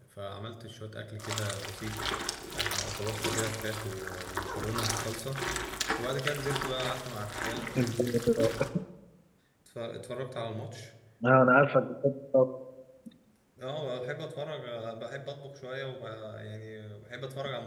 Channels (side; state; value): both; identical; correlation 1.00